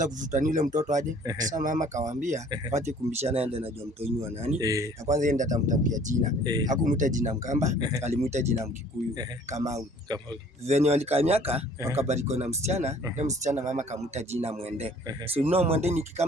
kuvutania yule mtoto aje. Sasa mama kawaambia, wache kumbishana yeye anajua mtoto ni wa nani. Na kwanza yeye ndiye atamtafutia jina. Hakumuita jina Mkamba, alimuita jina Mkikuyu, Kamau. Venye walikamiaka wakabariko na msichana, na msichana mama kamuita jina Mwende. So Mwende ni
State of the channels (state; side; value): normal; both; correlation 0.54